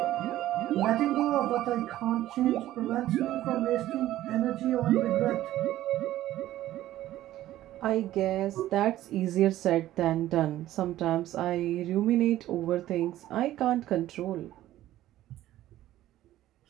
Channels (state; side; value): quieter; left; 14.2 dB